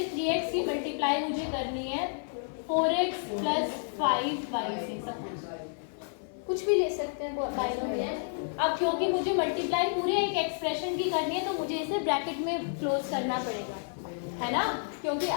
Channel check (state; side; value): silent; right; 56 dB below the other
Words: 3x की मल्टीप्लाई मुझे करनी है 4x प्लस 5y से, सपोज कुछ भी ले सकते हैं बाइनोमियल। अब क्योंकि मुझे मल्टीप्लाई पूरे एक एक्सप्रेशन की करनी है तो मुझे इसे ब्रैकेट में क्लोज करना पड़ेगा, है ना? क्योंकि